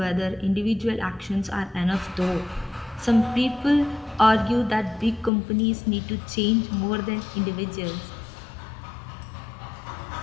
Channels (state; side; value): drops out; right; at 5.3 s